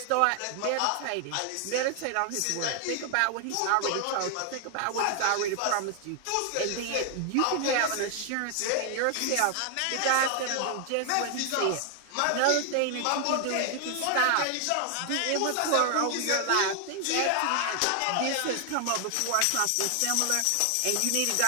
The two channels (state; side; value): different; both; correlation 0.00